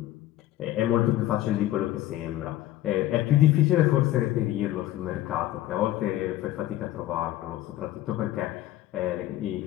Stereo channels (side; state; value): right; quieter; 14.5 dB